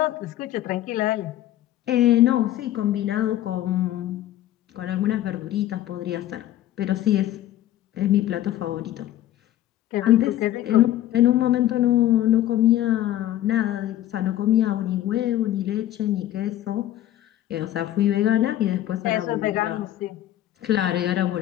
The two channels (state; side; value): quieter; right; 13.3 dB